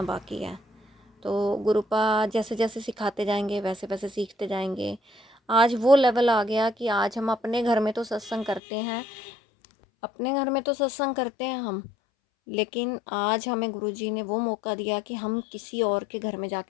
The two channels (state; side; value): drops out; right; at 8.6 s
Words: बाकी है। तो गुरुपा जैसे जैसे सिखाते जाएंगे वैसे वैसे सीखते जाएंगे। आज वो लेवल आ गया कि आज हम अपने घर में तो सत्संग करते हैं, हम, लेकिन आज हमें गुरुजी ने वो मौका दिया कि हम किसी और के घर में